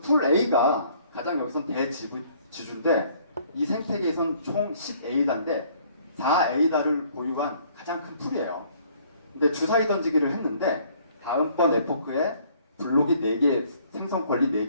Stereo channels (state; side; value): inverted; both; correlation -0.60